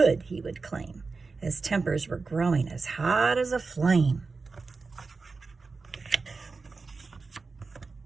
he would claim, as tempers were growing as hot as a flame.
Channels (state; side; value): quieter; left; 4.2 dB